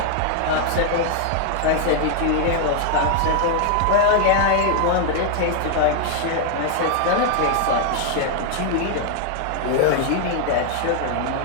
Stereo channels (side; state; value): both; different; correlation 0.00